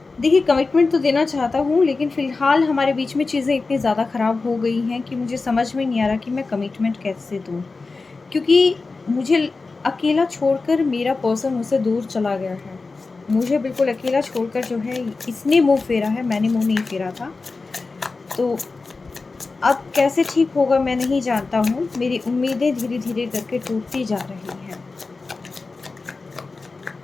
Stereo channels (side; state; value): right; quieter; 3.9 dB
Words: देखिए, कमिटमेंट तो देना चाहता हूँ, लेकिन फ़िलहाल हमारे बीच में चीज़ें इतनी ज़्यादा ख़राब हो गई हैं कि मुझे समझ में नहीं आ रहा कि मैं कमिटमेंट कैसे दूँ? क्योंकि मुझे अकेला छोड़कर मेरा पर्सन मुझसे दूर चला गया है। मुझे बिल्कुल अकेला छोड़कर जो है इसने मुँह फेरा है, मैंने मुँह नहीं फेरा था। तो अब कैसे ठीक होगा मैं नहीं जानता हूँ। मेरी उम्मीदें धीरे-धीरे करके टूटती जा रही हैं।